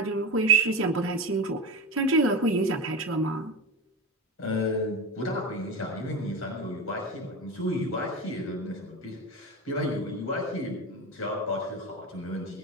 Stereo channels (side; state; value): both; normal; correlation 0.21